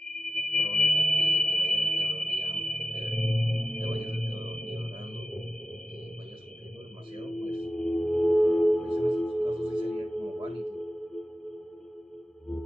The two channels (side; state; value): both; normal; correlation 0.93